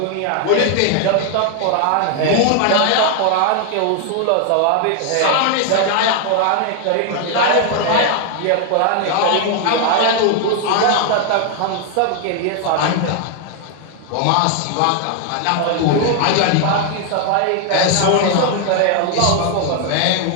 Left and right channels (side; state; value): both; different; correlation 0.00